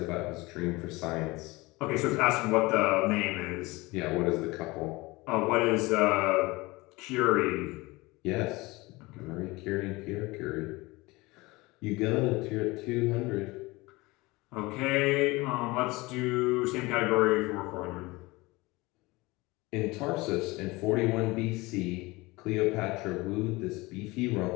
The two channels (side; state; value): right; quieter; 22.4 dB